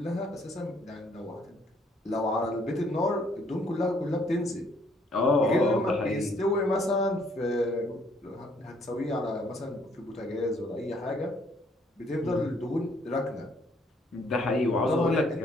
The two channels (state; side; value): normal; both; correlation 0.65